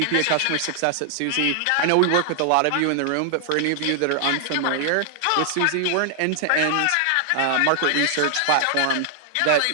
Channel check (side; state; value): both; different; correlation 0.00